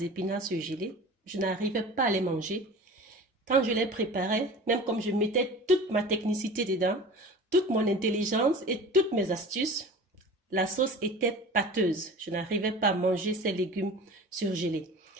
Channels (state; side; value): normal; both; correlation 0.38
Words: épinards surgelés. Je n'arrivais pas à les manger. Quand je les préparais, même comme je mettais toute ma technicité dedans, toute mon intelligence et toutes mes astuces, la sauce était pâteuse. Je n'arrivais pas à manger ces légumes surgelés.